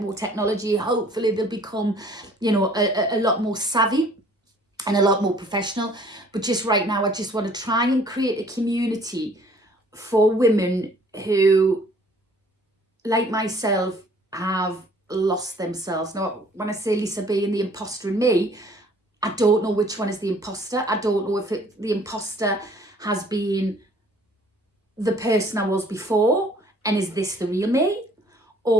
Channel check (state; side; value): normal; both; correlation 0.56